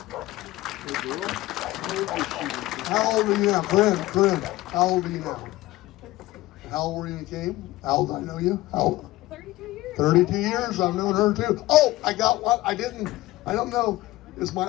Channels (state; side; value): quieter; right; 17.7 dB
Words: How old are you now? Brent, how old are you now? How old were you when you came? How old do I know you? How old? 32 years. 32 years, I've known her too. Oh, I got one. I don't know. Is my